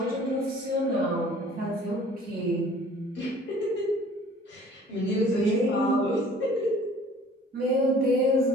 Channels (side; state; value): both; normal; correlation 0.51